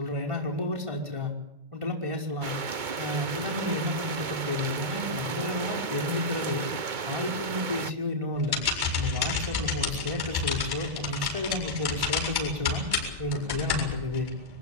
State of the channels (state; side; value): late; left; 2.2 ms